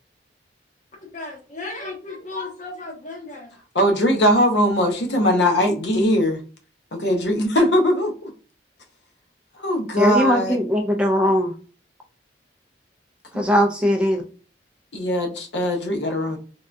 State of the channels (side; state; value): both; normal; correlation 0.48